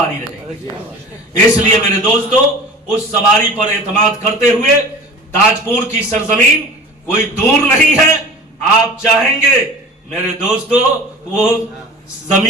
رہے. اس لیے میرے دوستو، اس سواری پر اعتماد کرتے ہوئے تاج پور کی سرزمین کوئی دور نہیں ہے. آپ چاہیں گے میرے دوستو وہ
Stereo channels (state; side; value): normal; both; correlation 0.39